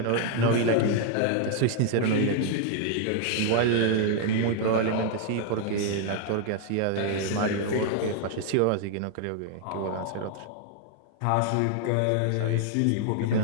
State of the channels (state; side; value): different; both; correlation 0.00